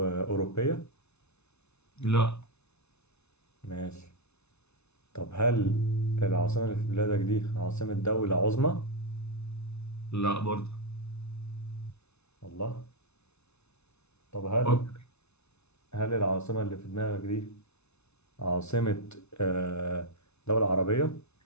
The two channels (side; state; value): right; late; 0.81 ms